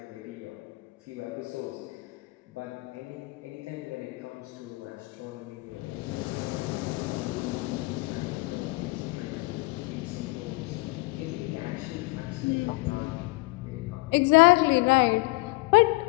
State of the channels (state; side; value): quieter; right; 24.5 dB